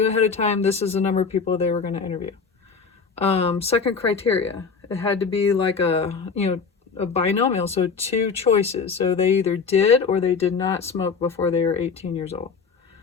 ahead of time, this is the number of people they were going to interview. Second criteria, it had to be like a binomial, so 2 choices. So they either did or they did not smoke before they were 18 years old.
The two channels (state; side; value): quieter; right; 5.4 dB